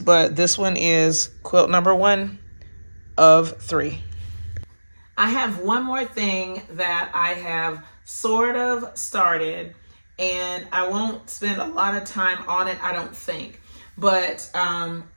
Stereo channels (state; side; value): inverted; both; correlation -1.00